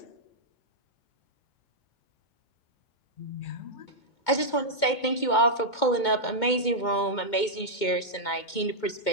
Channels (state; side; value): late; right; 2.2 ms